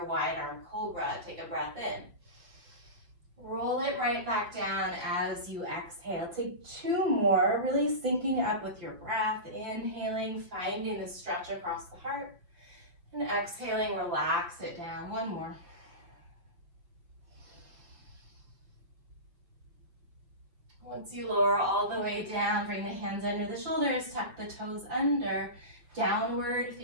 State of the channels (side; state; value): left; late; 5.8 ms